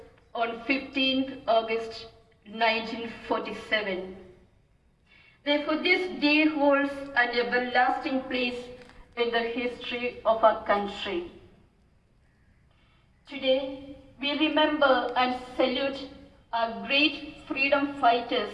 on 15th August 1947. Therefore, this day holds an everlasting place in the history of our country. Today, we remember and salute our great freedom fighters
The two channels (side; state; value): both; identical; correlation 1.00